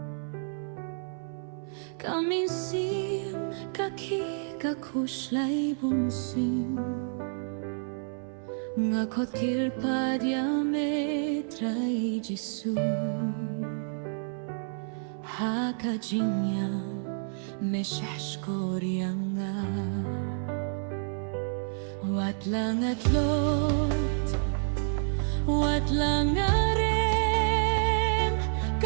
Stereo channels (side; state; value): left; silent; 58 dB below the other